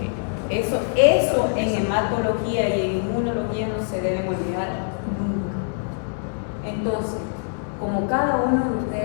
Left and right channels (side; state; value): right; silent; digital silence